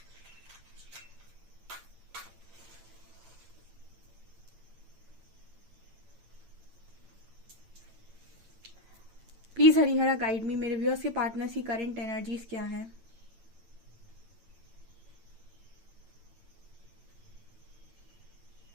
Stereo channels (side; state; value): left; late; 9.0 ms